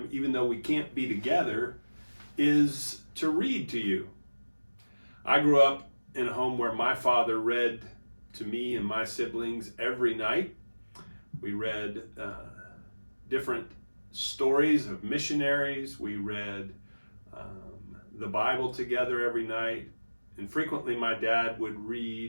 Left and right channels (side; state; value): both; inverted; correlation -1.00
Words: even though we can't be together, is to read to you. I grew up in a home where my father read to me and my siblings every night. We read different stories of missionaries. We read the Bible together every night. And frequently my dad would